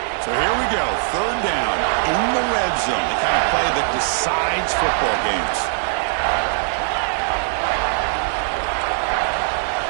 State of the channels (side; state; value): left; silent; digital silence